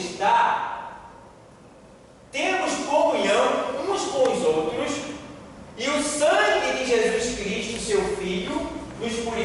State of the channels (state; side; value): identical; both; correlation 1.00